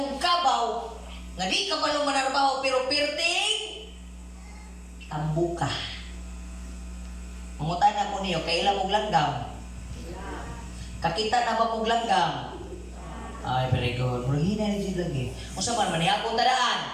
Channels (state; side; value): identical; both; correlation 1.00